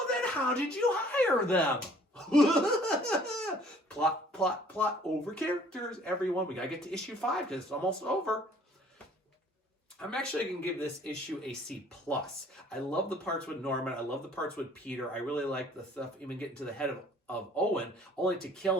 then how did you hire them? plot over characters, everyone. We gotta get to issue 5 because it's almost over. I'm actually going to give this issue a C+. I love the parts with Norman. I love the parts with Peter. I really like the stuff, even getting to the head of Owen, only to kill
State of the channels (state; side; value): normal; both; correlation 0.56